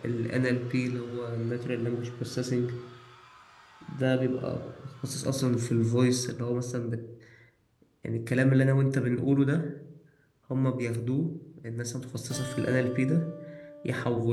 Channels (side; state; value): both; identical; correlation 1.00